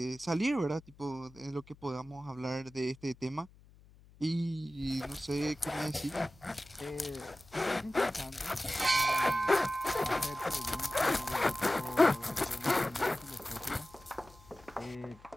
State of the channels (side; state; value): left; noise; hum, 24 dB below the sound